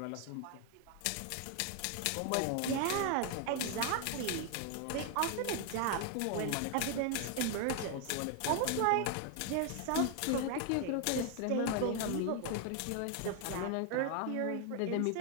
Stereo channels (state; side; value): different; both; correlation 0.00